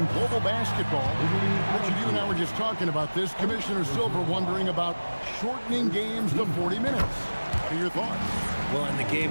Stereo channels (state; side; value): inverted; both; correlation -1.00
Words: global basketball, Richard, you and I were just talking about this. Commissioner Silver wondering about shortening games to 40 minutes. What are your thoughts? Well, in the